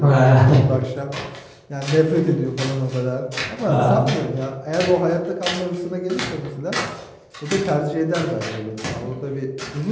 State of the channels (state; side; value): identical; both; correlation 1.00